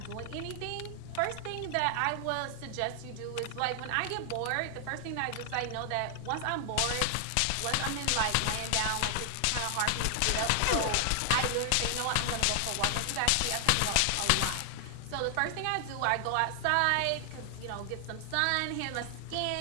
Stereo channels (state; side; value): different; both; correlation 0.00